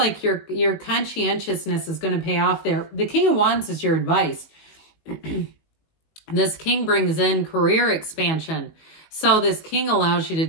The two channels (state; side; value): late; right; 19 ms